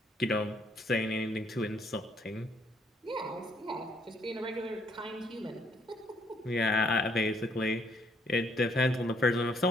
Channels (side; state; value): both; normal; correlation 0.68